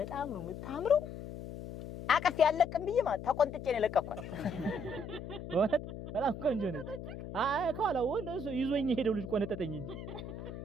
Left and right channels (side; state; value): left; noise; hum, 10 dB below the sound